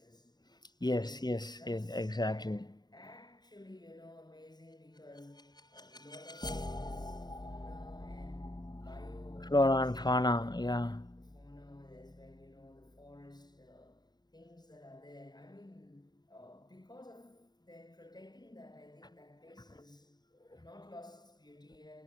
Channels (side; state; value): right; late; 0.20 ms